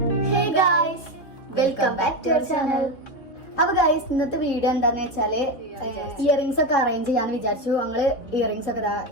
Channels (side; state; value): right; late; 3.5 ms